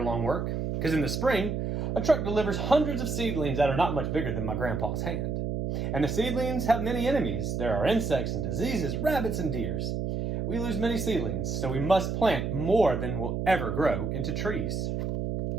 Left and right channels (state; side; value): noise; right; hum, 2 dB below the sound